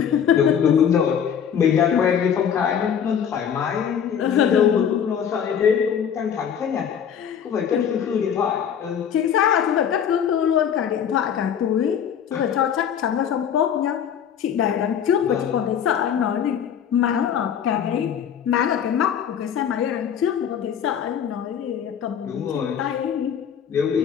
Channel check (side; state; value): right; quieter; 8.3 dB